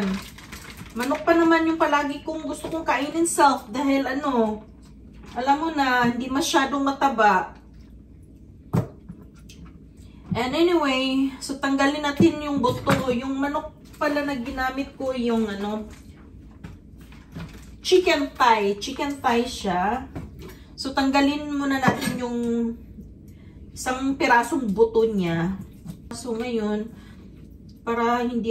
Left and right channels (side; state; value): both; identical; correlation 1.00